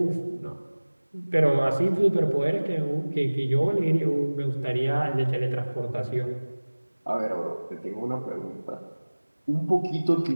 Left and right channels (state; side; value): inverted; both; correlation -1.00